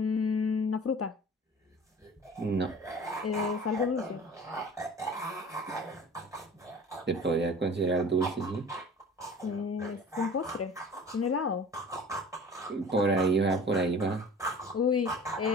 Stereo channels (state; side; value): normal; both; correlation 0.42